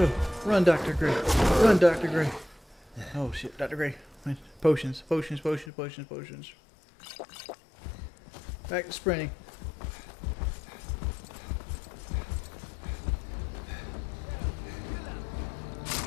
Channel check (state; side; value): drops out; right; at 5.7 s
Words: Run, Dr. Gray. Run, Dr. Gray. Oh shit, Dr. Gray. Potions, potions, potions, potions, potions. Back to sprinting.